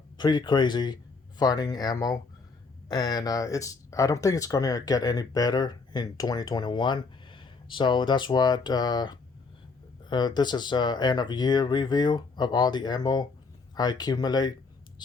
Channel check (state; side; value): quieter; right; 4.3 dB